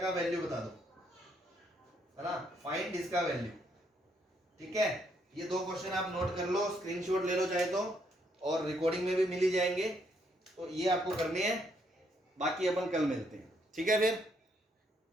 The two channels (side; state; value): both; normal; correlation 0.73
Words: का वैल्यू बता दो, है ना, फाइंड इसका वैल्यू। ठीक है, ये 2 क्वेश्चन आप नोट कर लो, स्क्रीनशॉट ले लो चाहे तो, और रिकॉर्डिंग में भी मिल ही जाएंगे। तो ये आपको करने हैं, बाकी अपन कल मिलते हैं। ठीक है, फिर